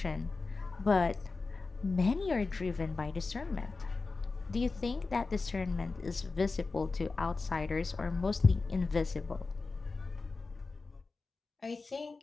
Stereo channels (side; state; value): right; quieter; 3.9 dB